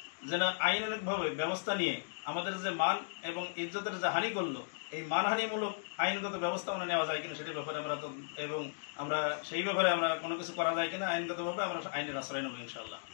যেন আইনানুগভাবে ব্যবস্থা নিয়ে আমাদের যে মান এবং ইজ্জতের যে হানি করলো, এই মানহানিমূলক আইনগত ব্যবস্থা আমরা নেওয়া যায় কিনা সেটার ব্যাপারে আমরা তো, এবং আমরা সেই ব্যাপারে আমরা কোনো কিছু করা যায় কিনা আইনগতভাবে আমরা আইনের আশ্রয় নেব ইনশাআল্লাহ।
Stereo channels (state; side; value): silent; right; digital silence